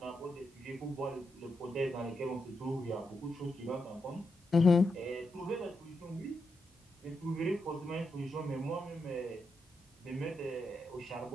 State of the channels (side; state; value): both; normal; correlation 0.84